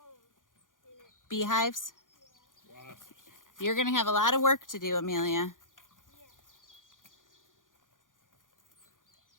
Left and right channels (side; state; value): right; late; 0.89 ms